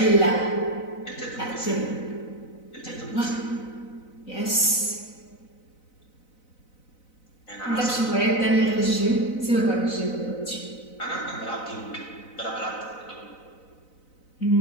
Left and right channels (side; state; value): right; late; 4.0 ms